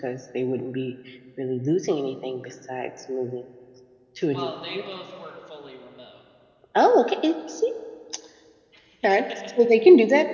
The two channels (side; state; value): both; identical; correlation 1.00